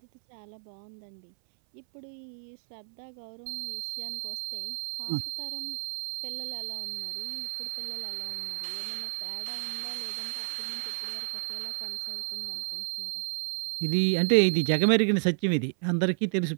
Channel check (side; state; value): left; silent; 57 dB below the other